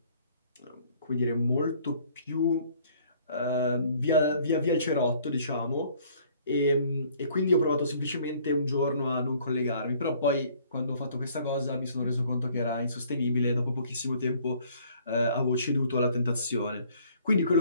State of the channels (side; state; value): both; inverted; correlation -0.59